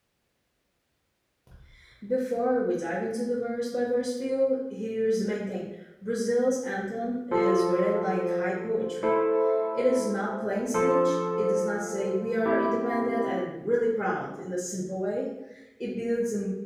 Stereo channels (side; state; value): both; identical; correlation 1.00